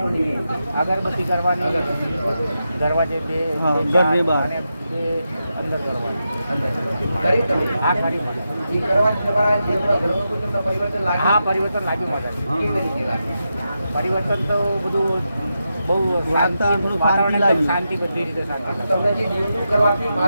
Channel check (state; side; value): inverted; both; correlation -0.87